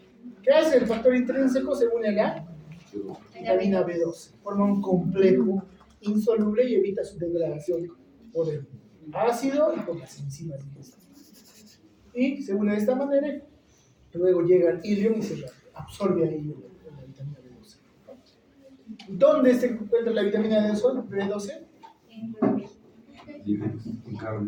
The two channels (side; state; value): both; identical; correlation 1.00